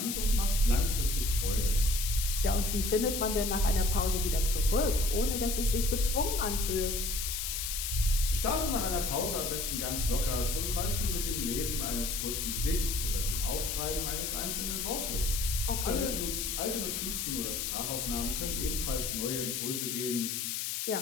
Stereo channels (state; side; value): noise; left; hiss, 2 dB below the sound